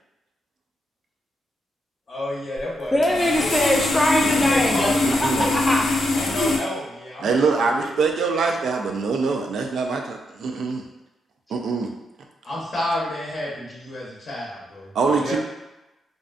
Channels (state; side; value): normal; both; correlation 0.80